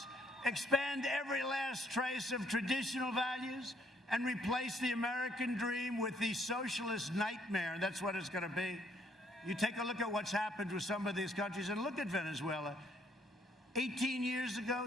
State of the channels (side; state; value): both; normal; correlation 0.68